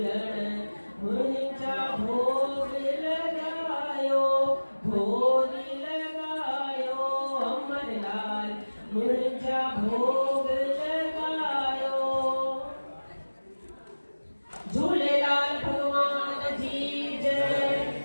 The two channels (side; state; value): both; inverted; correlation -1.00